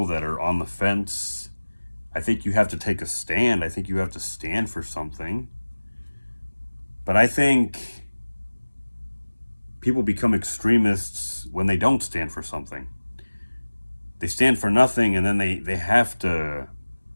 that are on the fence. I think you have to take a stand. I think you have to stand for something. But I think people become extremists when they don't stand for something. They stand for nothing, and then they have to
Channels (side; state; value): both; inverted; correlation -1.00